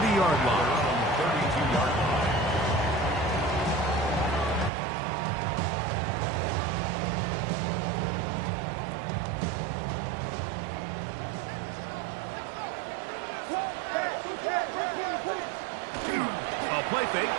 line. 32-yard line. A play fake,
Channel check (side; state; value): left; drops out; at 4.7 s